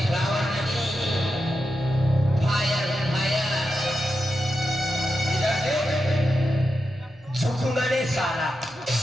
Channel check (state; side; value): normal; both; correlation 0.88